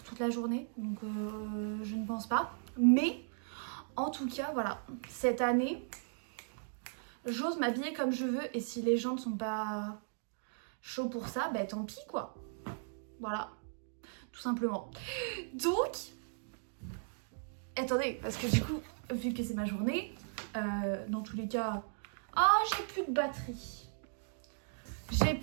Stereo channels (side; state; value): left; silent; digital silence